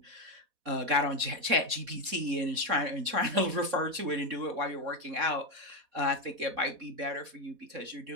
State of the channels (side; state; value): left; late; 4.1 ms